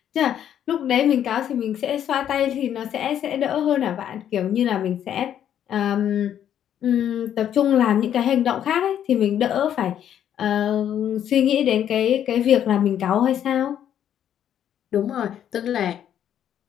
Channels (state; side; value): quieter; right; 10.0 dB